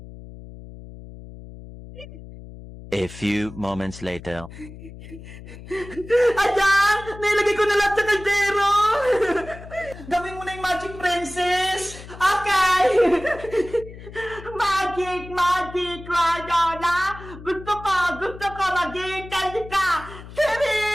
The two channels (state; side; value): noise; left; hum, 15 dB below the sound